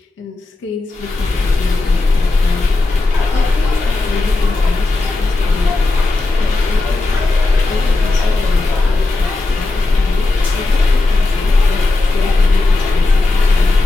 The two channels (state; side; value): quieter; right; 3.2 dB